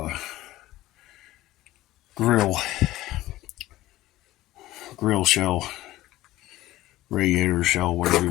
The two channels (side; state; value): right; quieter; 16.3 dB